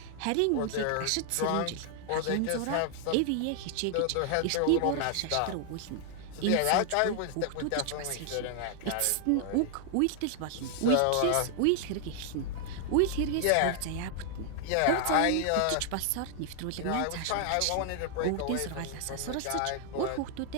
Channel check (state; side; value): different; both; correlation 0.00